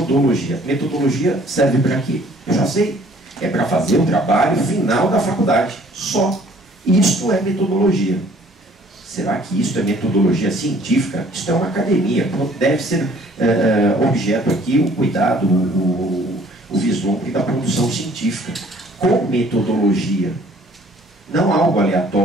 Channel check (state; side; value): normal; both; correlation 0.57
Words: Metodologia serve para quê? Eu já sei. É para fazer o trabalho final da faculdade. Só. Isto é metodologia. Será que isso é metodologia científica? Isto é uma academia. Deve ser objeto aqui o cuidado, o vislumbre da produção científica. Com metodologia. Não algo